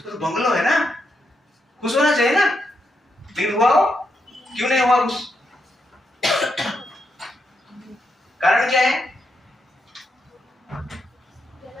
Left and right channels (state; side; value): normal; both; correlation 0.82